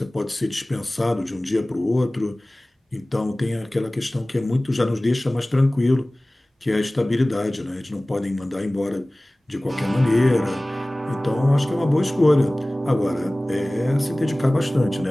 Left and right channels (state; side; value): normal; both; correlation 0.98